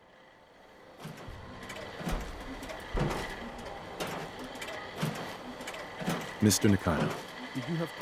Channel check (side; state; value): both; identical; correlation 1.00